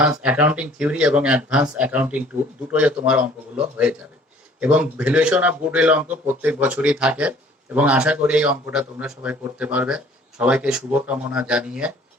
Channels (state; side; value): normal; both; correlation 0.54